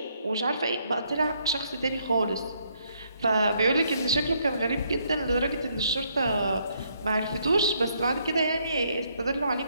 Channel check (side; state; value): both; inverted; correlation -0.72